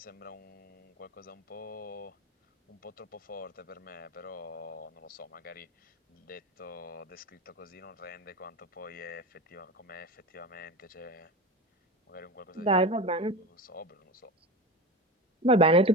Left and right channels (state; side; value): normal; both; correlation 0.26